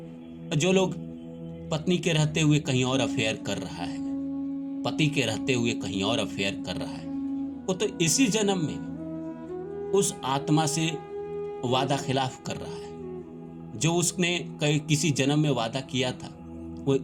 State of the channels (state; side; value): identical; both; correlation 1.00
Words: जो लोग पत्नी के रहते हुए कहीं और अफेयर कर रहा है, पति के रहते हुए कहीं और अफेयर कर रहा है, वो तो इसी जन्म में उस आत्मा से वादा खिलाफ कर रहा है। जो उसने किसी जन्म में वादा किया था, वो